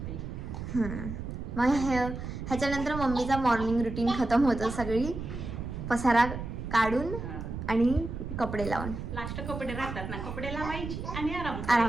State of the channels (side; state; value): right; noise; rumble, 7 dB below the sound